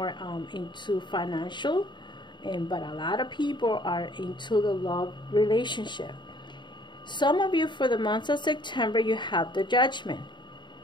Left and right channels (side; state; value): right; late; 0.22 ms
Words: into financial, but a lot of people are into the love relationship. Some of you, for the month of September, you have the Judgment.